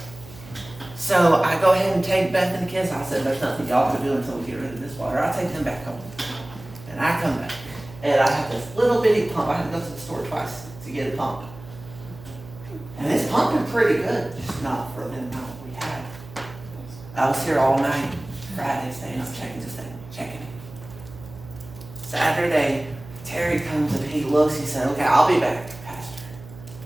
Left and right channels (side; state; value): right; noise; hum, 18 dB below the sound